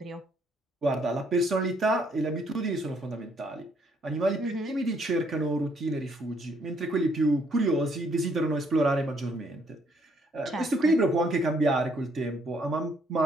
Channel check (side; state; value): both; normal; correlation 0.68